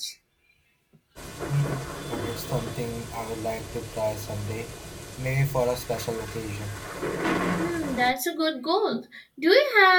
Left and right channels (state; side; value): identical; both; correlation 1.00